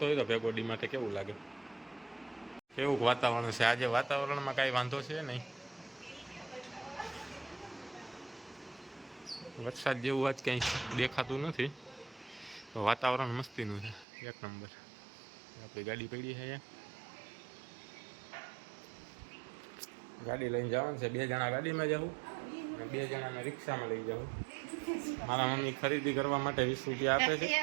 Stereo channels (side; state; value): left; drops out; at 14.1 s